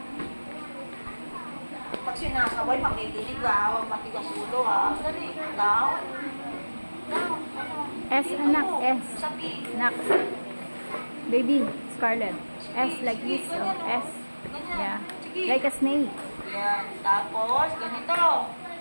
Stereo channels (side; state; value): both; inverted; correlation -1.00